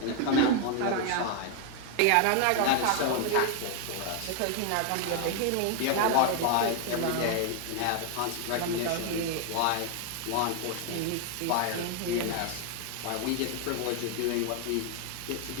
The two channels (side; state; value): both; different; correlation 0.01